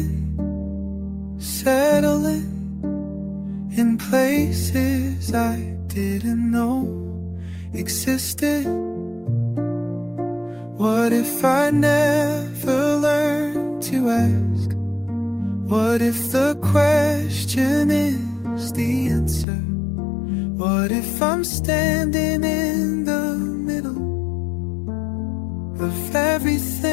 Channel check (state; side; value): drops out; right; at 19.5 s